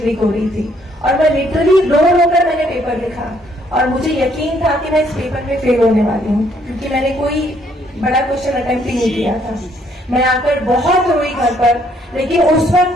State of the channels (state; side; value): normal; both; correlation 0.67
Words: हो रही थी, और मैं लिटरली रो कर मैंने पेपर लिखा, और मुझे यकीन था कि मैं इस पेपर में फेल होने वाली हूँ, क्योंकि मैंने कोई बड़ा क्वेश्चन अटेम्प्ट ही नहीं किया था। मैं आकर बहुत रोई घर पर, लेकिन उस